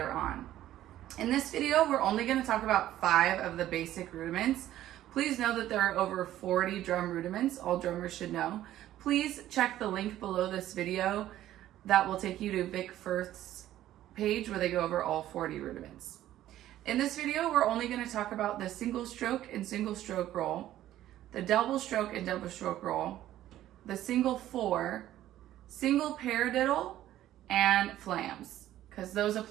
on. In this video we're only going to talk about 5 of the basic rudiments. Please know that there are over 40 drum rudiments all drummers should know. Please check the link below this video that will take you to Vic Firth's page where they go over all 40 rudiments. In this video, we're only going to talk about the single stroke and single stroke roll, the double stroke and double stroke roll, the single 4, single paradiddle, and flams, because those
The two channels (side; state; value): left; quieter; 13.3 dB